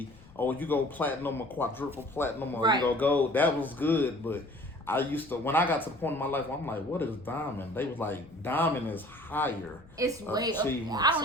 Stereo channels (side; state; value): left; noise; rumble, 23 dB below the sound